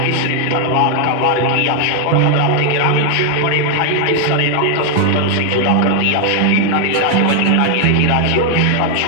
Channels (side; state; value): both; different; correlation 0.00